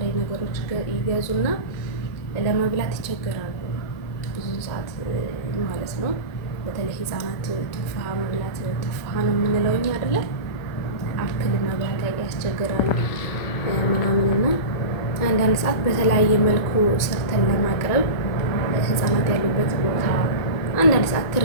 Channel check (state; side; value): late; right; 1.9 ms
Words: ነገሮች ይገዙና ለመብላት ይቸገራሉ ብዙ ሰዓት ማለት ነው። በተለይ ህፃናት ቱፋሃ መብላት ቱፋሃ ነው የምንለው እኛ አይደለ? አፕል መብላት ያስቸግራል ምናምንና አንዳንድ ሰዓት በተለያየ መልኩ ሰርተን ለማቅረብ ህፃናት ያሉበት ቦታ አንዳንድ ሰዓት